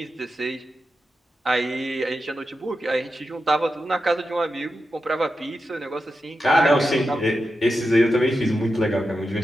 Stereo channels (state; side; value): normal; both; correlation 0.89